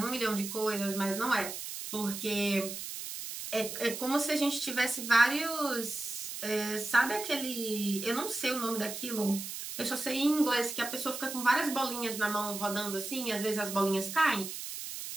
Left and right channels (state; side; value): noise; right; hiss, 7 dB below the sound